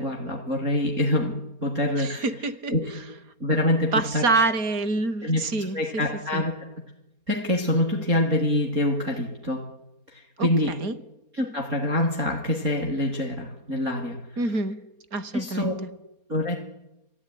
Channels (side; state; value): left; late; 4.3 ms